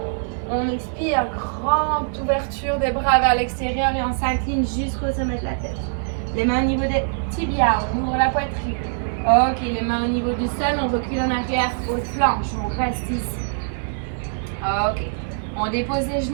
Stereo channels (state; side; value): silent; left; digital silence